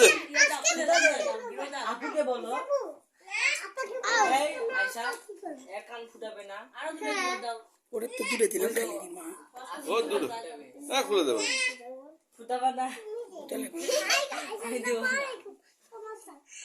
আপুকে বলো এই আয়শা এক কান ফুটাবে না আরো দুটো দাও ওরে তো দূরে দিলাম খালি মা ও দূর না খুলে দেবো ফুটাবে না তাহলে আমি দেব না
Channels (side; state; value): both; identical; correlation 1.00